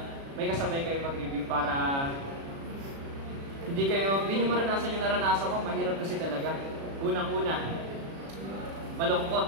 may kasabay kayo mag-review para hindi nyo maranasan yung naranasan ko. Mahirap kasi talaga. Unang-una,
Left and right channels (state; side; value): late; left; 36 ms